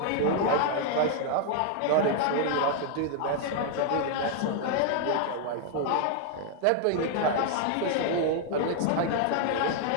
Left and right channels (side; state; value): both; different; correlation 0.00